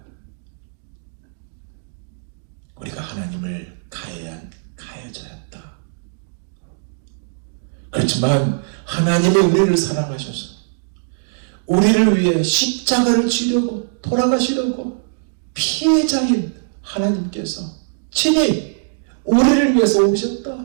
우리가 하나님을 가해져야 한다. 그렇지만 하나님이 우리를 사랑하셔서 우리를 위해 십자가를 지려고 돌아가시려고 피해자인 하나님께서 친히 우리를 위해서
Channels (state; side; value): silent; left; digital silence